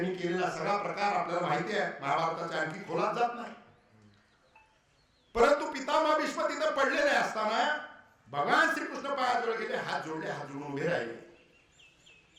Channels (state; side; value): identical; both; correlation 1.00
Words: केलेला सगळा प्रकार आपल्याला माहिती आहे. महाभारताच्या आणखी खोलात जात नाही. परंतु पितामह भीष्म तिथे पडलेले असताना भगवान श्रीकृष्ण पायाजवळ गेले, हात जोडून उभे राहिले.